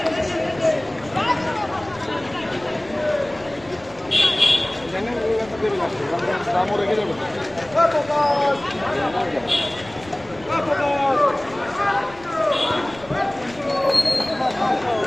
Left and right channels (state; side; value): noise; left; rumble, 22 dB below the sound